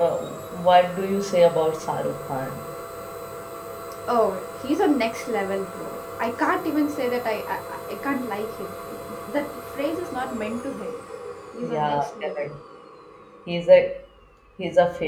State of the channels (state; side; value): identical; both; correlation 1.00